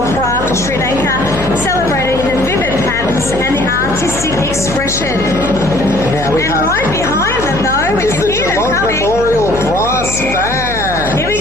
craft of Sri Lanka, celebrating the vivid patterns and the artistic expression. Now we and have right behind them, though, we is can the hear them Geelong coming. Memorial Brass Band. Here we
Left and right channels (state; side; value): noise; left; hum, 9 dB below the sound